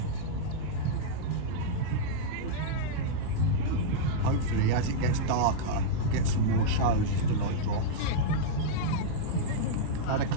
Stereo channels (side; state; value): both; different; correlation -0.03